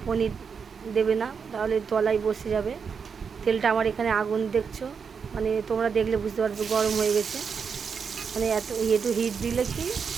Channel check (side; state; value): left; quieter; 6.1 dB